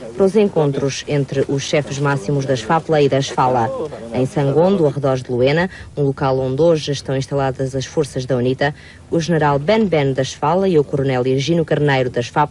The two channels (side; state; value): both; identical; correlation 1.00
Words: para os encontros entre os chefes máximos das FAPLA e das FALA. Em Sangondo, arredores de Luena, um local onde hoje estão instaladas as forças da UNITA, o general Ben das FALA e o coronel Ergino Carneiro das